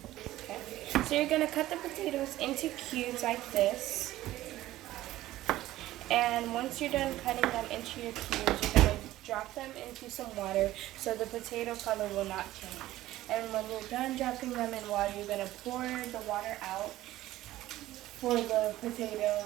Okay. So you're gonna cut the potatoes into cubes like this. And once you're done cutting them into your cubes, you're gonna drop them into some water so the potato color will not change. And when you're done dropping them in water, you're going to pour the water out for the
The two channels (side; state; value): left; quieter; 15.4 dB